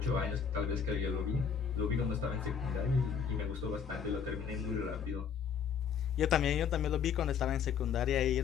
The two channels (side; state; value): right; quieter; 7.1 dB